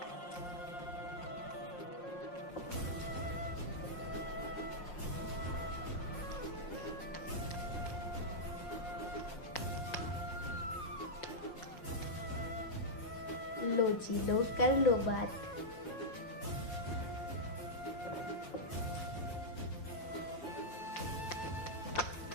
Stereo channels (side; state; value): right; late; 5.6 ms